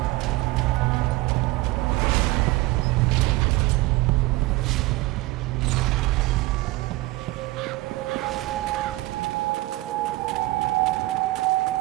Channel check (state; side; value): quieter; left; 19.9 dB